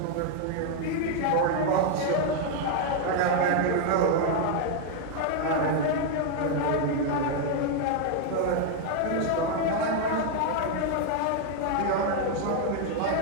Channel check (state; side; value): different; both; correlation 0.00